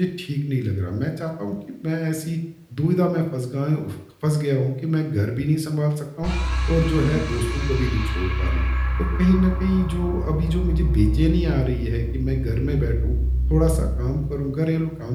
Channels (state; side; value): identical; both; correlation 1.00